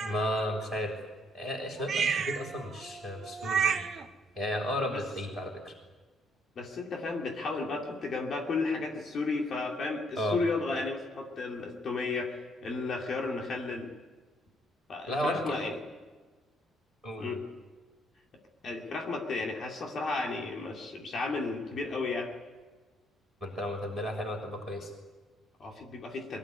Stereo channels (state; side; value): normal; both; correlation 0.68